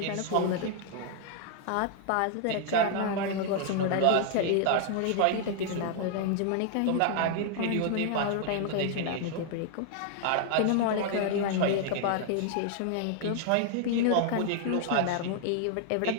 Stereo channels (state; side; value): different; both; correlation 0.00